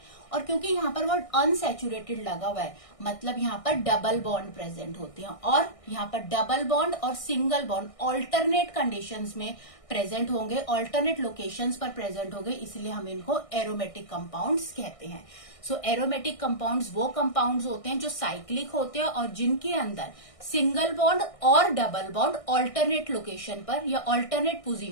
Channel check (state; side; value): late; right; 1.6 ms